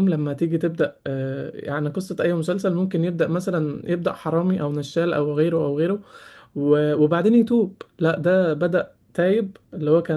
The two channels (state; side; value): identical; both; correlation 1.00